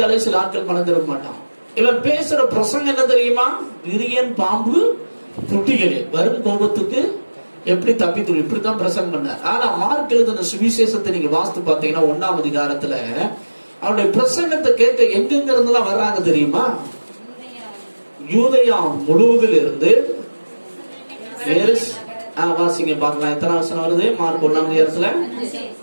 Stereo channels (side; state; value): both; inverted; correlation -1.00